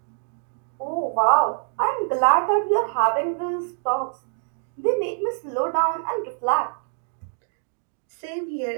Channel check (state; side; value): silent; left; digital silence